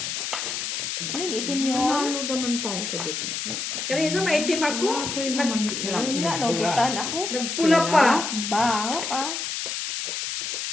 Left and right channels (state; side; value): noise; left; hiss, 3 dB below the sound